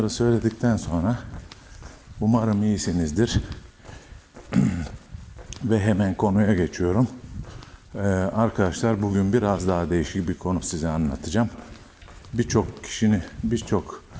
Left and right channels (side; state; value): both; identical; correlation 1.00